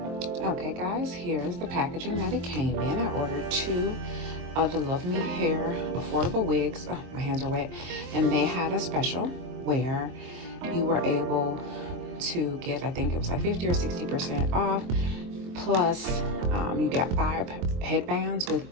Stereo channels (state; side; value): late; left; 23 ms